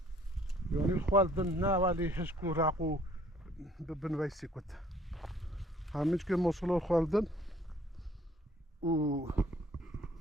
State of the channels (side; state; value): both; normal; correlation 0.58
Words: یعنی خوالدن نه ولی هشکو راقو بنویسی کت همیچ که ماشالله خوالدن و